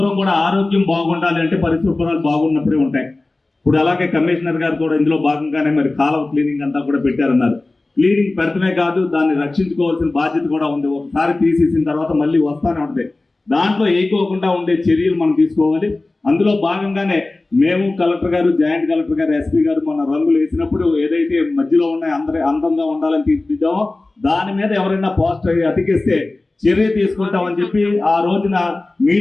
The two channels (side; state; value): right; quieter; 3.1 dB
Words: కూడా ఆరోగ్యం బాగుండాలి అంటే పరిశుభ్రాలు బాగున్నప్పుడే ఉంటాయి. ఇప్పుడు అలాగే కమిషనర్ గారు కూడా ఇందులో భాగంగానే మరి కాలువ క్లీనింగ్ అంతా కూడా పెట్టారన్నారు. క్లీనింగ్ పెడతమే కాదు, దాన్ని రక్షించుకోవాల్సిన బాధ్యత కూడా ఉంది. ఒకసారి తీసేసిన తర్వాత మళ్ళీ వస్తానే ఉంటుంది. దాంట్లో ఏకోకుండా ఉండే చర్యలు మనం తీసుకోవాలి. అందులో భాగంగానే మేము కలెక్టర్ గారు, జాయింట్ కలెక్టర్ గారు, ఎస్పీ గారు మొన్న రంగులు వేసినప్పుడు ఏదైతే మధ్యలో ఉన్నాయి అందంగా ఉండాలని తీర్చిదిద్దామో దాని మీద ఎవరైనా పోస్టర్ అతికిస్తే చర్య తీసుకుంటామని చెప్పి ఆ రోజున